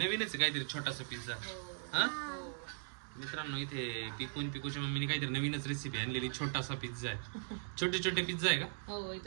आहे काहीतरी छोटासा पिझ्झा. हा मित्रांनो, इथे पिकूच्या मम्मीने काहीतरी नवीनच रेसिपी आणलेली. छोटासा पिझ्झा आहे. छोटे छोटे पिझ्झा आहे का? हो,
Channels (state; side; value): silent; left; digital silence